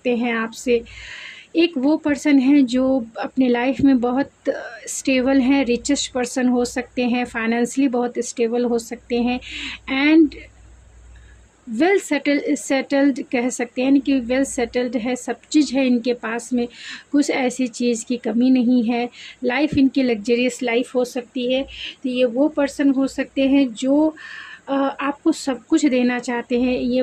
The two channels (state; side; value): identical; both; correlation 1.00